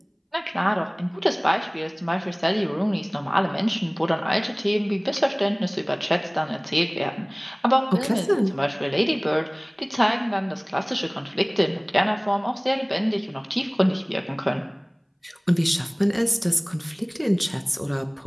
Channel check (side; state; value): both; identical; correlation 1.00